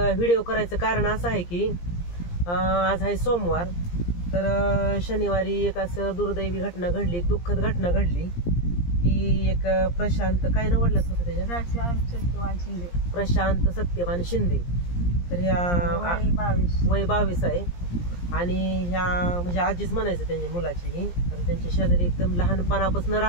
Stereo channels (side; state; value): right; late; 17 ms